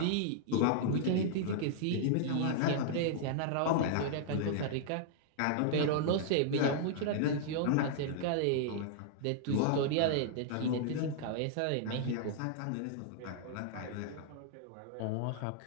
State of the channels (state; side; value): different; both; correlation -0.01